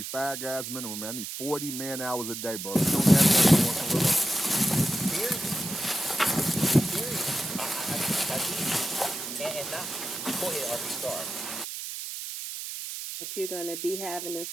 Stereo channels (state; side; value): noise; right; hiss, 7 dB below the sound